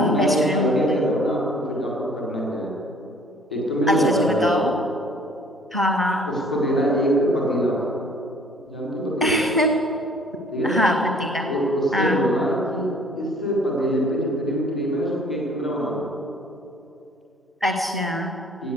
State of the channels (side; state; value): both; normal; correlation 0.56